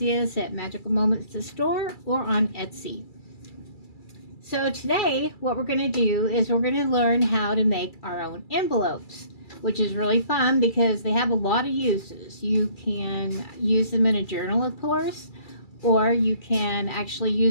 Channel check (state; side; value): late; right; 2.3 ms